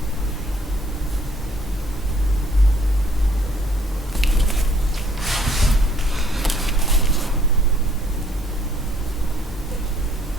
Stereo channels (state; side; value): normal; both; correlation 0.62